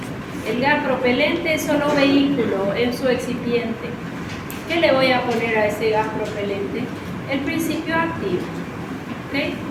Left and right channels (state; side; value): identical; both; correlation 1.00